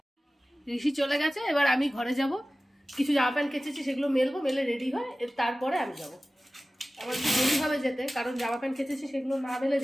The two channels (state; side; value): normal; both; correlation 0.96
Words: ঋষি চলে গেছে, এবার আমি ঘরে যাব। কিছু জামা প্যান্ট কেচেছি, সেগুলো মেলবো, মেলে রেডি হয়, তারপরে আমি যাব। আমার একটু দেরি হবে যেতে, কারণ জামা প্যান্ট কেচেছি সেগুলো না মেলে